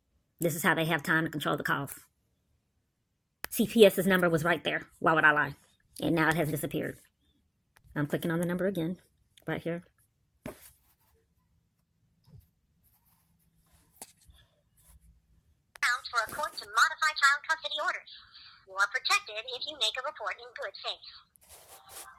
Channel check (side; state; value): both; identical; correlation 1.00